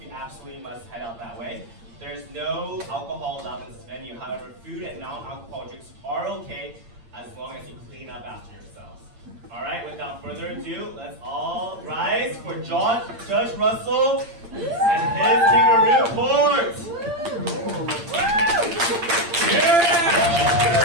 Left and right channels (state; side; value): late; left; 8.7 ms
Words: you absolutely must head out that way. There's no alcohol allowed in this venue. However, food and non-alcoholic drinks are okay as long as you clean up after yourselves. Alright, without further ado, let's all rise for Judge Russell and his Kangaroo Court!